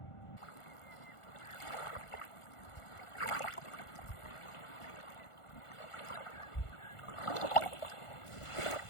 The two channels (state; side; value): late; right; 1.4 ms